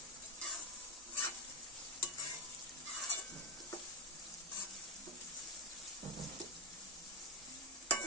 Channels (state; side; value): normal; both; correlation 0.09